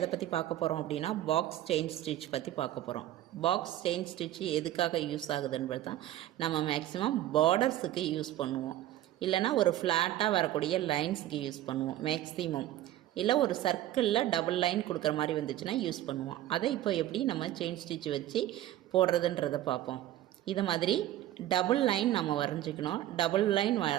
பத்தி பார்க்க போறோம் அப்படினா பாக்ஸ் செயின் ஸ்டிட்ச் பத்தி பார்க்க போறோம். பாக்ஸ் செயின் ஸ்டிட்ச் எதுக்காக யூஸ் ஆகுதுன்றது தான் நம்ம மேக்ஸिमम பார்டர்ஸ்க்கு யூஸ் பண்ணுவோம். இல்லனா ஒரு ஃப்ளாட்டா வரக்கூடிய லைன்ஸ்க்கு யூஸ் பண்ணுவோம் மேக்ஸिमम. இல்ல ஒரு சர்க்கிள்ல டபுள் லைன் கொடுக்கிற மாதிரி வந்துச்சுனா யூஸ் பண்ணுவோம். அதை இப்போ எப்படி நம்ம செயின் ஸ்டிட்ச் வச்சு போடுறதுன்றதை பார்ப்போம். இத மாதிரி டபுள் லைன் நம்ம வரைஞ்சிக்கணும். டபுள் லைன்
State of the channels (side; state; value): left; quieter; 13.5 dB